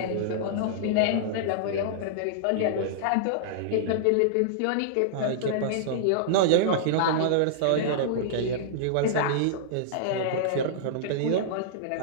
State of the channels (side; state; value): both; different; correlation -0.02